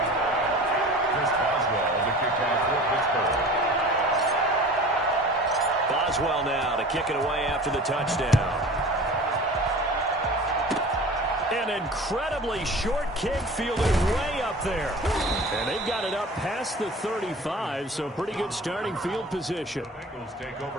Chris Boswell to kick off for Pittsburgh. Boswell now to kick it away after the touchdown. An incredibly short kick fielded way up there. And they've got it up past the 35, so pretty good starting field position. Bengals take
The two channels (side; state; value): both; normal; correlation 0.40